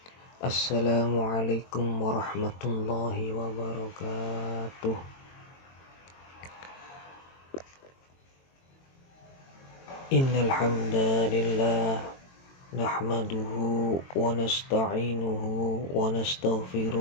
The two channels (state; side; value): late; right; 22 ms